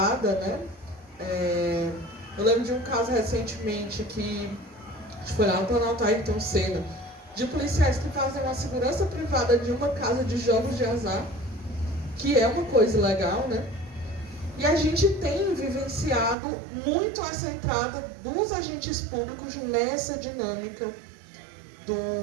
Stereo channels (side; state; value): left; drops out; at 16.4 s